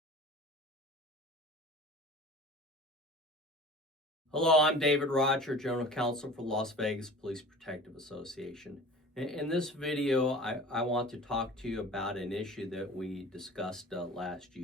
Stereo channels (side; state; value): both; normal; correlation 0.41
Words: I'm David Roger, General Counsel for Las Vegas Police Protective Association. In this video, I want to talk to you about an issue that we discussed last